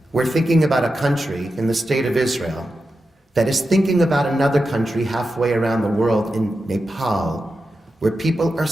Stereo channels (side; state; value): both; normal; correlation 0.90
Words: we're thinking about a country in the state of Israel that is thinking about another country halfway around the world in Nepal, where people are